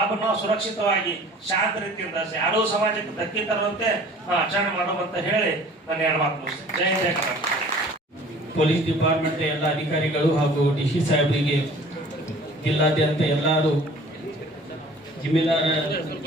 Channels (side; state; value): both; normal; correlation 0.48